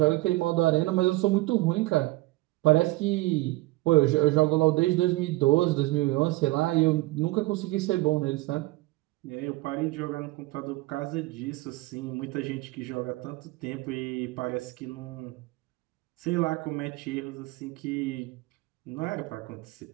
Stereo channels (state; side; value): quieter; left; 20.2 dB